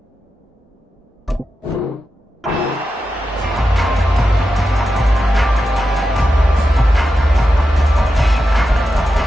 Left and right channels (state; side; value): normal; both; correlation 0.90